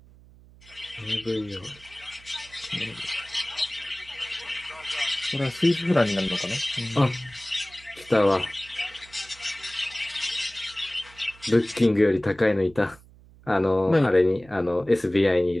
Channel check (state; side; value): noise; right; hum, 24 dB below the sound